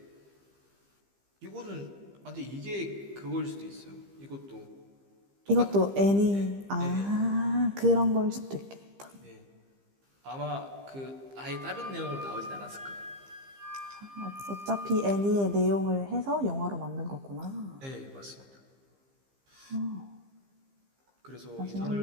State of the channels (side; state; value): left; late; 15 ms